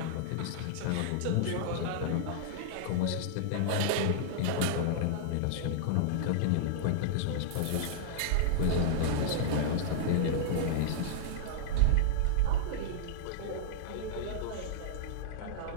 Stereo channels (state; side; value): different; both; correlation -0.02